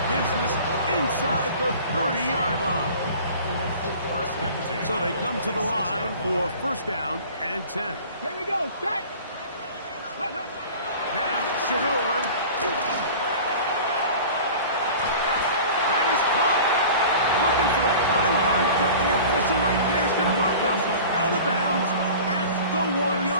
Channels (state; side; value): inverted; both; correlation -0.41